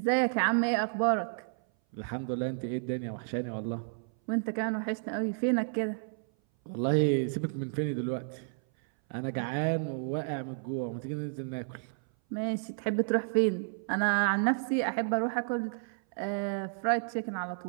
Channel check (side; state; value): left; silent; 57 dB below the other